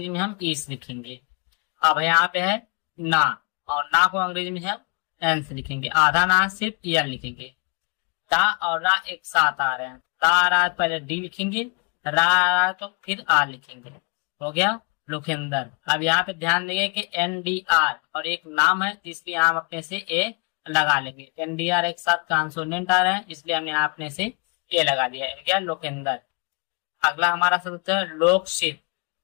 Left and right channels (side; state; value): right; quieter; 33.5 dB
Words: में हम ई से लिखेंगे। अब यहाँ पे है ना, और ना को अंग्रेजी में हम एन से लिखेंगे, आधा ना सिर्फ एन लिखेंगे। ता और रा एक साथ आ रहे हैं, ता आ रहा है पहले डी लिखेंगे, रा आ रहा है तो फिर आर लिखेंगे, हो गया लोकेंदर। अब यहाँ पे ध्यान देंगे कि एन डी आर और एक नाम है, इसलिए हम अपने से ए लगा लेंगे। एन डी आर एक साथ कॉन्सोनेंट आ रहे हैं, इसलिए हमने यहाँ अपने से ए लगा दिया है, क्या लोकेंदर। अगला हमारा शब्द है लोकशित।